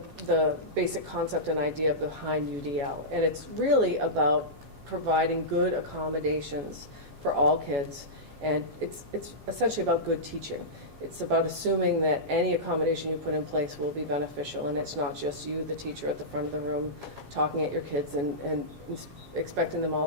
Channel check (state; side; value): late; left; 7.4 ms